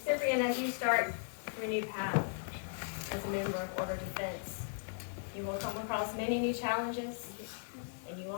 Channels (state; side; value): silent; right; digital silence